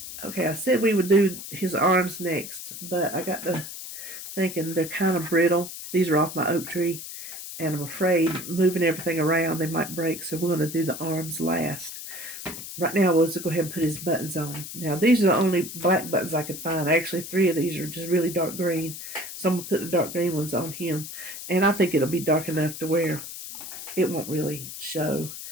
Okay, I said we would do his arms next, but I got to thinking they're kind of brittle. These are off my oak tree, and I'm afraid moving everything around they might break, so we're going to do the arms last. Right now, we'll just go ahead and put his buttons on. Now, these are the only black buttons I could find. Actually, 3 of these are just really dark green, so I'm going to put the dark green ones on him, and I think it'll be dark enough to where it won't really show,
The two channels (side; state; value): left; noise; hiss, 10 dB below the sound